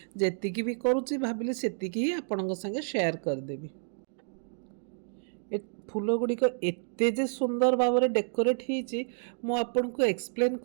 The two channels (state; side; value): silent; left; digital silence